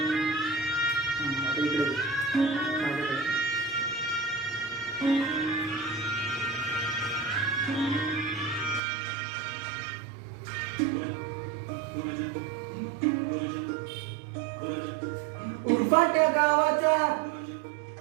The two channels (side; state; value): left; drops out; at 8.8 s